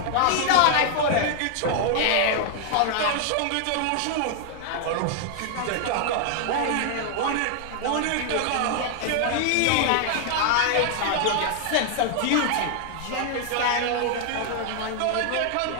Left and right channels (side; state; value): both; different; correlation 0.00